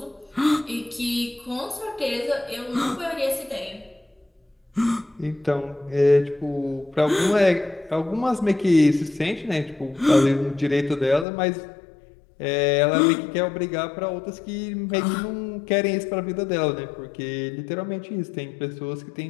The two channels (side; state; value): right; drops out; at 11.2 s